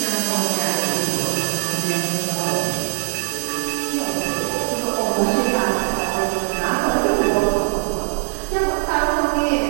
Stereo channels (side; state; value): left; silent; digital silence